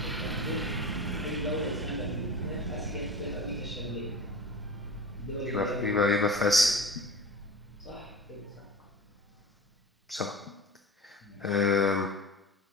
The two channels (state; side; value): normal; both; correlation 0.33